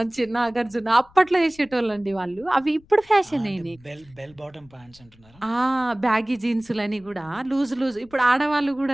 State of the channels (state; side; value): noise; left; rumble, 27 dB below the sound